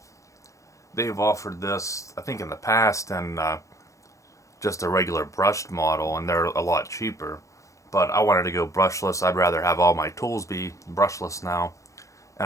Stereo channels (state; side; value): late; right; 0.15 ms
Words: They've offered this, I think in the past, and just a regular brushed model, and they're a lot cheaper. But I wanted to go brushless. I'd rather have all my tools be brushless now.